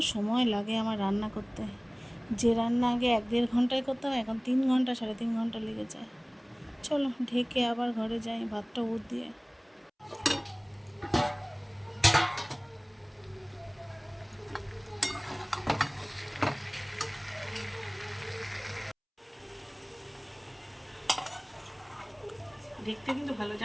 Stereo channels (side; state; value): both; identical; correlation 1.00